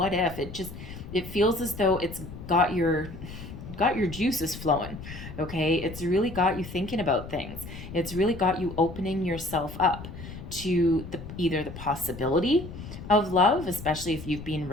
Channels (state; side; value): noise; left; rumble, 12 dB below the sound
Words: if? It feels as though it's got your juices flowing. Okay, it's really got you thinking about things. It's really got you opening yourself up to either the possibility of love, especially if you've been